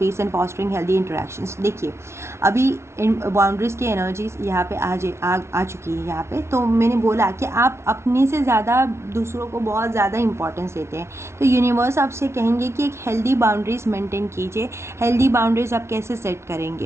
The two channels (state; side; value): late; left; 0.13 ms